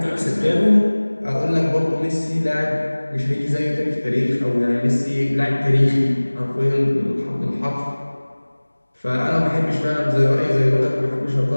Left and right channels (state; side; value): inverted; both; correlation -1.00